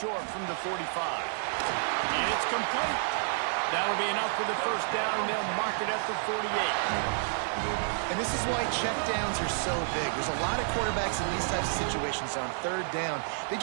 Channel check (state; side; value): silent; left; digital silence